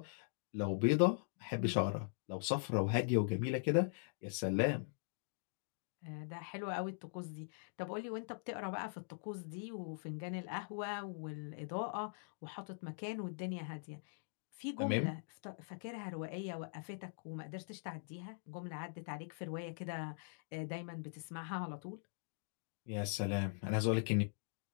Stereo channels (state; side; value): silent; right; digital silence